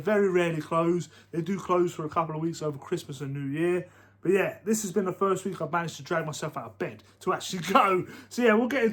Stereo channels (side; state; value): both; identical; correlation 1.00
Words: rarely close. They do close for a couple of weeks over Christmas and New Year. But yeah, this has been the first week I've managed to drag myself out of bed to actually go. So yeah, we'll get